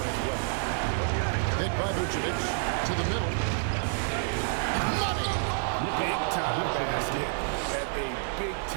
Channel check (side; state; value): left; silent; digital silence